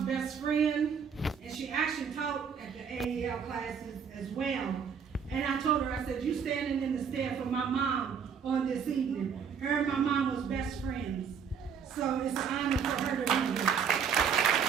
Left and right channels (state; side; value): quieter; left; 6.8 dB